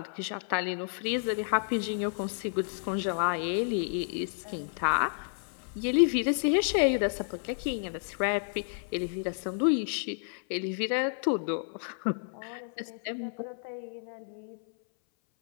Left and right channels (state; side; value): silent; right; 57 dB below the other